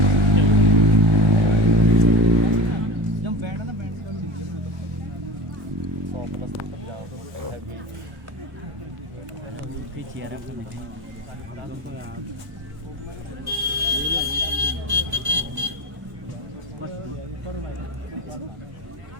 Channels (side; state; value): left; late; 1.0 ms